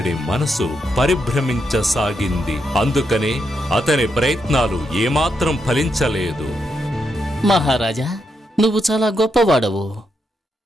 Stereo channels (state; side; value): normal; both; correlation 0.82